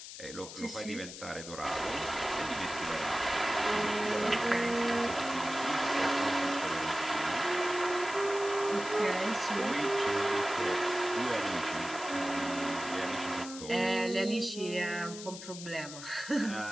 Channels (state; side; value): noise; left; hiss, 12 dB below the sound